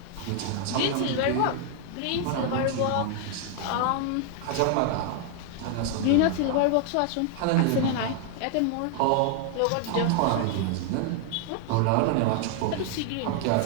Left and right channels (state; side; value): different; both; correlation 0.00